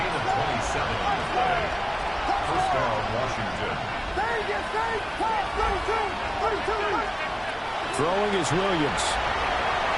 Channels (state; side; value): identical; both; correlation 1.00